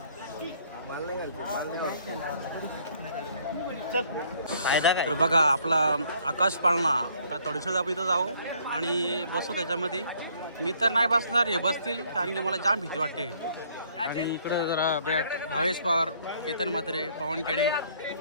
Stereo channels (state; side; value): inverted; both; correlation -0.63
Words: तर बघा आपला आकाश पाळणा. तर थोडीसं आपण इथं जाऊ आणि बसू त्याच्यामध्ये. मी तर नाही बसणार हे बसतील कारण की मला जाम भीती वाटते. आणि इकडं जरा बॅट भावेश पवार केतन म्हात्रे पवन केणे